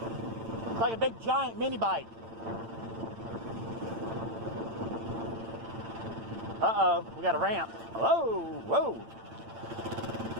It's like a big giant mini bike. Uh-oh, we got a ramp. Whoa, whoa.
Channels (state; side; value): late; left; 8.9 ms